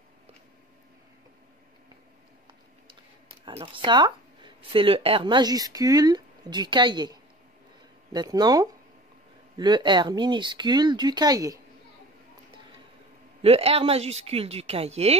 Alors ça, c'est le R majuscule du cahier. Maintenant, le R minuscule du cahier. Le R majuscule du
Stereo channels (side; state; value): both; normal; correlation 0.41